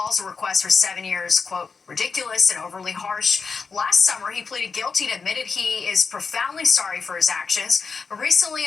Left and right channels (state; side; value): quieter; right; 5.1 dB